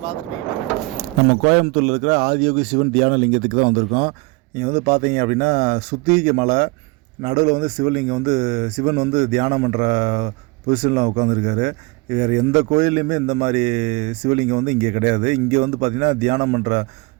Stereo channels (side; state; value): left; quieter; 25.9 dB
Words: நம்ம கோயம்புத்தூரில் இருக்கிற ஆதியோகி சிவன் தியான லிங்கத்துக்கு தான் வந்திருக்கோம். இங்கே வந்து பார்த்தீங்க அப்படின்னா சுத்திகை மலை நடுவில் வந்து சிவலிங்கம் வந்து சிவன் வந்து தியானம் பண்ணுற பொசிஷனில் உட்காந்துருக்காரு. வேறு எந்த கோயில்லையுமே இந்த மாதிரி சிவலிங்கம் வந்து இங்கே கிடையாது. இங்கே வந்து பார்த்திங்கன்னா தியானம் பண்ணுற